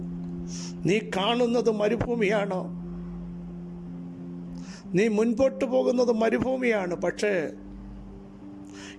നീ കാണുന്നത് മരുഭൂമിയാണ്, നീ മുൻപോട്ട് പോകുന്നത് മരുഭൂമിയാണ്. പക്ഷേ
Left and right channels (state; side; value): identical; both; correlation 1.00